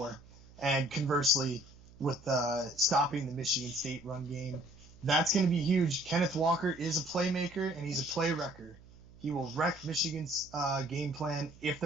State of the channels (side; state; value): right; noise; hum, 23 dB below the sound